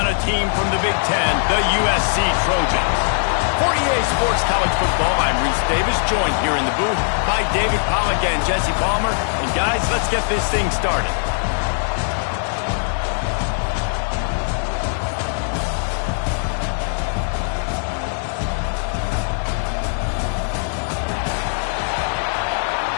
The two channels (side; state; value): right; silent; digital silence